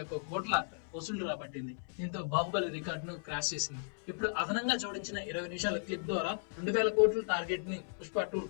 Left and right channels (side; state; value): right; silent; 54 dB below the other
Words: కోట్ల వసూళ్లు రాబట్టింది. దీంతో బాహుబలి రికార్డును క్రాష్ చేసింది. ఇప్పుడు అదనంగా జోడించిన 20 నిమిషాల క్లిప్ ద్వారా 2000 కోట్ల టార్గెట్ ని పుష్ప 2